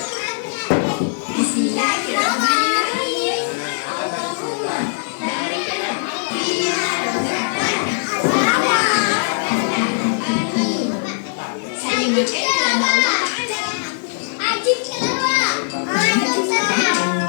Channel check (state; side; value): silent; right; 64 dB below the other